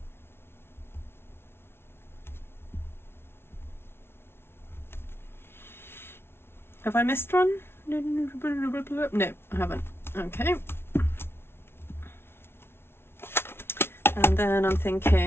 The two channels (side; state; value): right; late; 0.12 ms